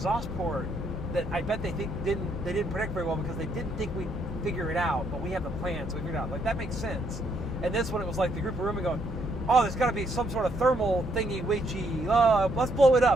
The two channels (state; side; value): normal; both; correlation 0.72